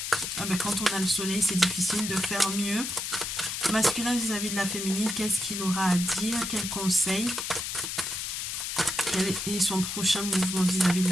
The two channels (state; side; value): noise; left; hiss, 4 dB below the sound